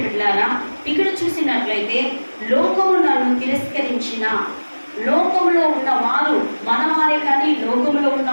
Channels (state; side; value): inverted; both; correlation -1.00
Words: ఇక్కడ చూసినట్లయితే లోకము నన్ను తిరస్కరించిన, లోకంలో ఉన్న వారు, మన వారే కానీ, లోకంలో ఉన్న